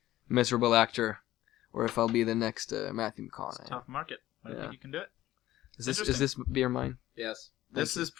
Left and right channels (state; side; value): quieter; right; 14.7 dB